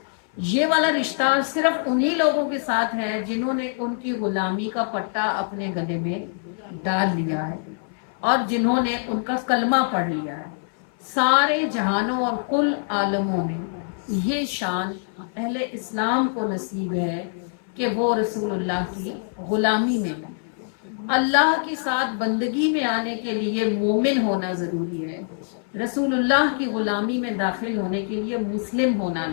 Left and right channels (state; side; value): silent; right; 57 dB below the other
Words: یہ والا رشتہ صرف انہی لوگوں کے ساتھ ہے جنہوں نے ان کی غلامی کا پٹا اپنے گلے میں ڈال لیا ہے اور جنہوں نے ان کا کلمہ پڑھ لیا ہے۔ سارے جہانوں اور کل عالموں میں یہ شان اہل اسلام کو نصیب ہے کہ وہ رسول اللہ کی غلامی میں ہے۔ اللہ کے ساتھ بندگی میں آنے کے لیے مومن ہونا ضروری ہے، رسول اللہ کی غلامی میں داخل ہونے کے لیے مسلم ہونا